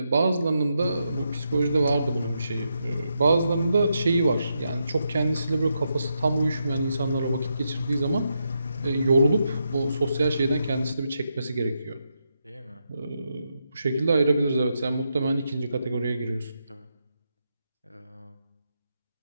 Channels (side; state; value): both; inverted; correlation -0.83